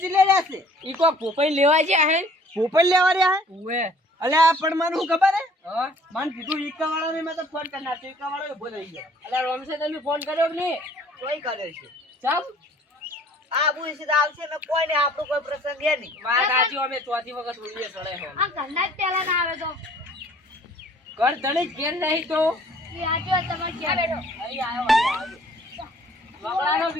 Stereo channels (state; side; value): normal; both; correlation 0.55